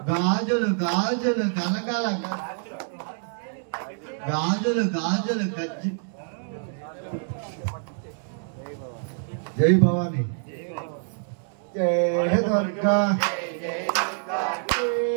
గాజులు గాజులు కలకల గాజులు గాజులు గజ్జి జై భవాని జై దుర్గా జై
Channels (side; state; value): left; silent; 61 dB below the other